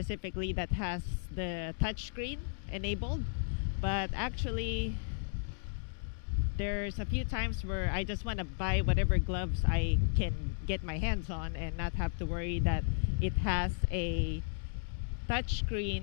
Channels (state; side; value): silent; right; digital silence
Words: that has the touchscreen enabled, but actually there's a few times where I just want to buy whatever gloves I can get my hands on and not have to worry that it has a